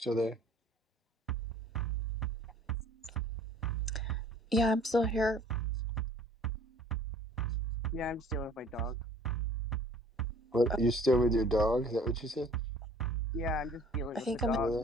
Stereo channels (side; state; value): both; normal; correlation 0.52